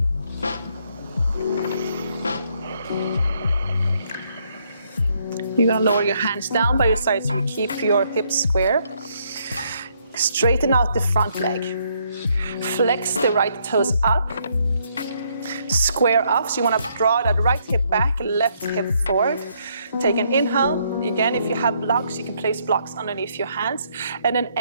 You're gonna lower your hands down by your sides so you keep your hips square. Straighten out the front leg. Flex the right toes up. Square up, so you wanna draw that right hip back, left hip forward. Take an inhale. Again, if you have blocks, you can place blocks underneath your hands. And then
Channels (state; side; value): inverted; both; correlation -0.72